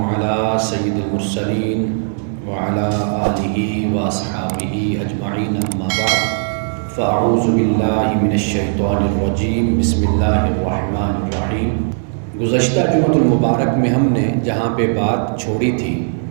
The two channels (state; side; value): silent; left; 68 dB below the other